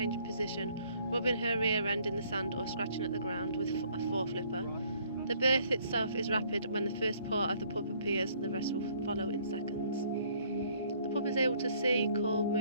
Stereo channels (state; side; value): inverted; both; correlation -0.63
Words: position, rubbing her rear end in the sand or scratching at the ground with a foreflipper. The birth itself is rapid. When the first part of the pup appears, the rest will follow in seconds. The pup is able to see, call,